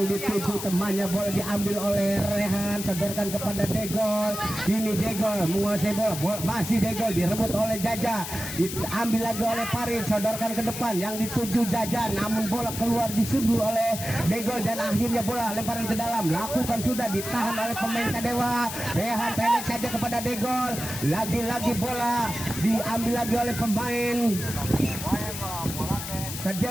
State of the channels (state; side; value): noise; left; hiss, 7 dB below the sound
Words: dituju temannya, bola diambil oleh Rehan, sodorkan kepada Degol. Ini Degol menguasai bola, masih Degol direbut oleh Jaja, diambil lagi oleh Farid, sodorkan ke depan yang dituju Jaja, namun bola keluar disundur oleh Degol dan akhirnya bola lemparan ke dalam, lakukan sudah, ditahan oleh pemain Sadewa. Rehan pendek saja kepada Degol, lagi-lagi bola diambil lagi oleh pemain